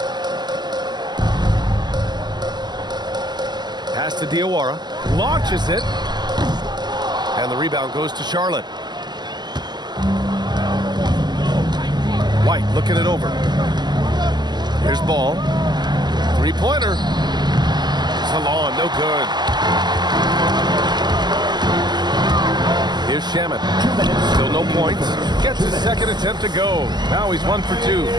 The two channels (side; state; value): left; late; 0.21 ms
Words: Pass to Diawara. Launches it. And the rebound goes to Charlotte. White looking it over. Here's Ball. Three-pointer. Salon, no good. Here's Shamet. Still no points. Gets his second attempt to go. Now he's 1 for 2.